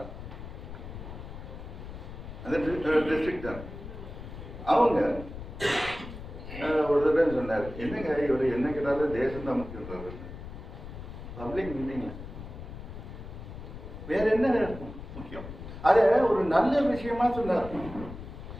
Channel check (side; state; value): left; noise; rumble, 11 dB below the sound